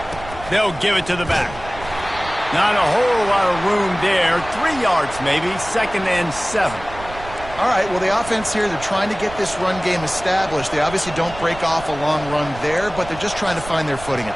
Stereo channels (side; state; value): right; noise; rumble, 14 dB below the sound